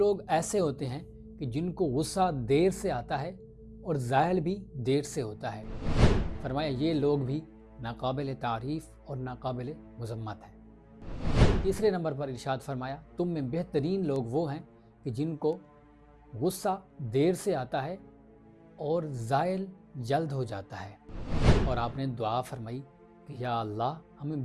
ایسے ہوتے ہیں کہ جن کو غصہ دیر سے آتا ہے اور زائل بھی دیر سے ہوتا ہے، فرمایا یہ لوگ بھی ناقابل تعریف اور ناقابل مذمت ہیں۔ تیسرے نمبر پر ارشاد فرمایا تم میں بہترین لوگ وہ ہیں کہ جن کو غصہ دیر سے آتا ہے اور زائل جلد ہو جاتا ہے، اور آپ نے دعا فرمائی کہ یا اللہ ہمیں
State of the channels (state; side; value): identical; both; correlation 1.00